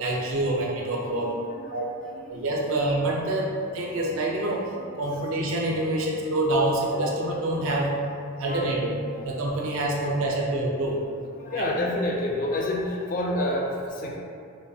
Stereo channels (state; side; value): normal; both; correlation 0.15